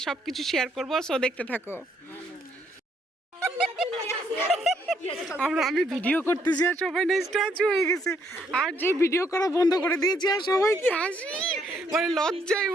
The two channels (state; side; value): normal; both; correlation 0.71